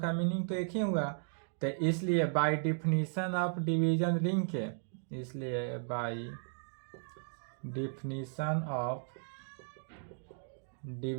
मीनिंग तो एक ही हुआ। तो इसलिए by definition of division ring के, इसलिए by definition of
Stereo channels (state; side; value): silent; left; digital silence